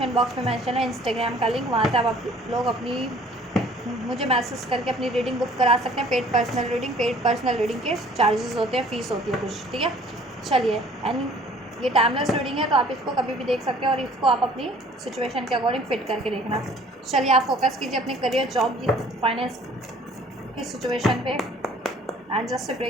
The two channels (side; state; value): both; normal; correlation 0.54